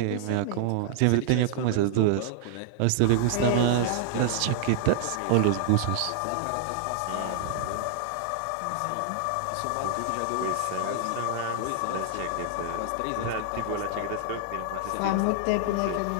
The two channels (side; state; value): both; different; correlation 0.00